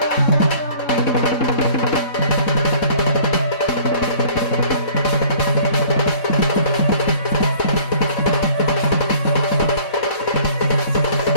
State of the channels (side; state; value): right; late; 3.7 ms